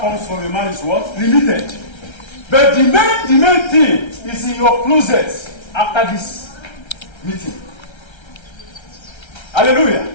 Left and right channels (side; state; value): right; late; 1.3 ms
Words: from a man is what? Limited. But the main thing is in your closet after this meeting. Hallelujah.